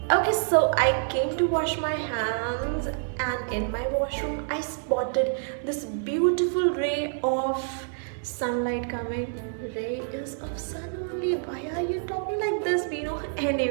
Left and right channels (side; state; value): left; silent; digital silence